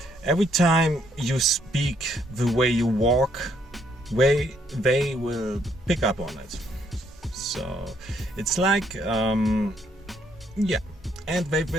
every time you speak, the way you walk, they will pick up on it. So it's like and they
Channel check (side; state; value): both; normal; correlation 0.70